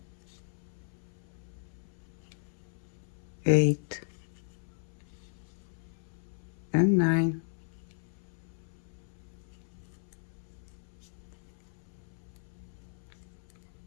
8 and 9.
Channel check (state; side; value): silent; right; 54 dB below the other